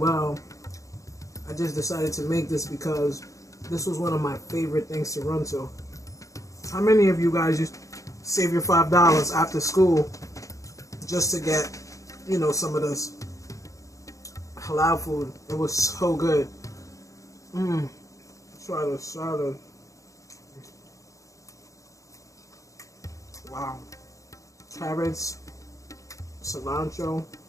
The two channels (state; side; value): late; right; 0.16 ms